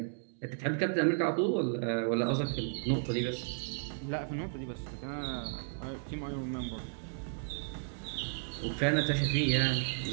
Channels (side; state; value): left; silent; digital silence